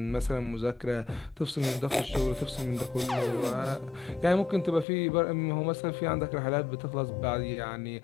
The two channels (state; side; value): drops out; right; at 4.9 s